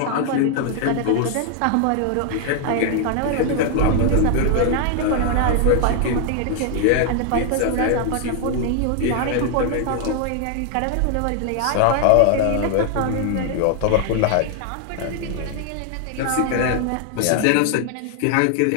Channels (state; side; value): different; both; correlation 0.00